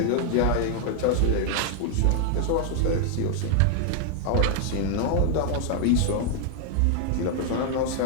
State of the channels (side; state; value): both; different; correlation 0.00